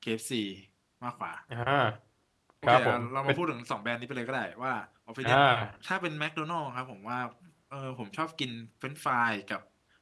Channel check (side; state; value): both; identical; correlation 1.00